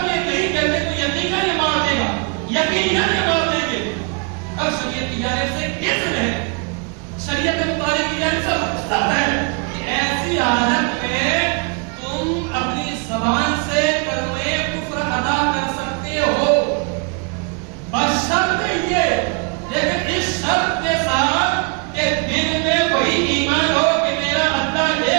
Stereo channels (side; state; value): left; quieter; 35.5 dB